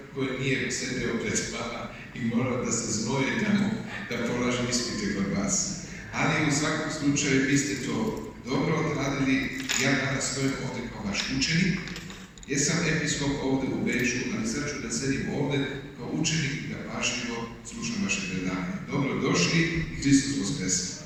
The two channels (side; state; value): both; identical; correlation 1.00